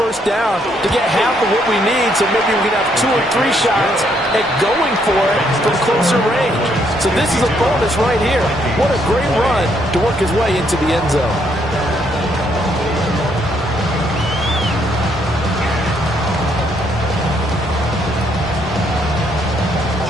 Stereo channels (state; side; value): normal; both; correlation 0.72